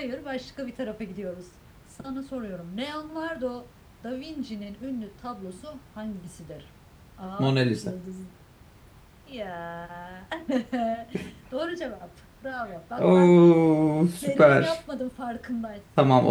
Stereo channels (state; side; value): identical; both; correlation 1.00